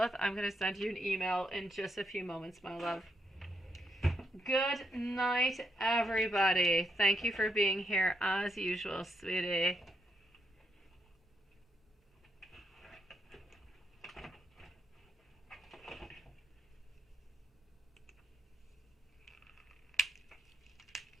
I'm going to send you an email in just a few moments, my love. Good night, everybody. Thank you for being here as usual, sweetie.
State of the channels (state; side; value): normal; both; correlation 0.78